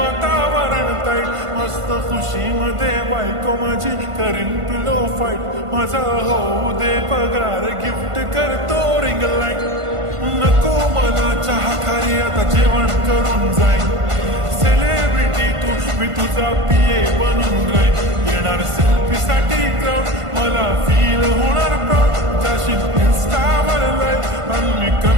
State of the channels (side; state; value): left; late; 1.5 ms